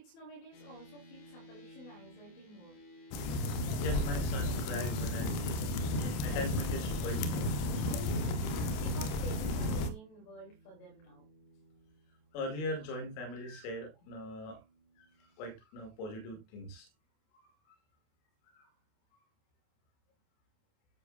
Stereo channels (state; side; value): late; right; 28 ms